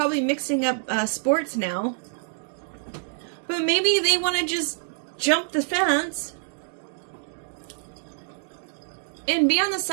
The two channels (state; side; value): silent; left; 61 dB below the other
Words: mixing up sports now. But maybe they want to just jump the fence and be on the